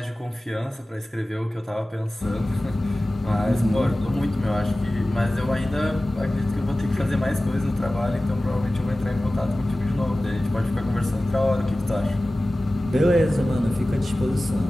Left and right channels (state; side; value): normal; both; correlation 0.96